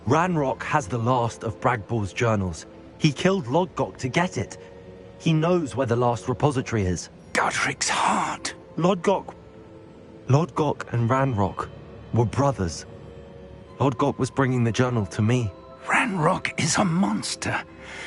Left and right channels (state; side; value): identical; both; correlation 1.00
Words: Ranrock has the last of Bragbor's journals. He killed Lodgok to get it. He knows where the last repository is. Godric's heart. Lodgok and Ranrock were brothers. Lodgok was bringing the journal to me. Ranrock is a monster.